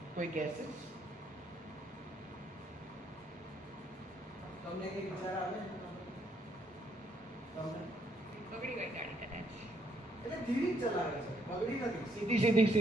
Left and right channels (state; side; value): normal; both; correlation 0.71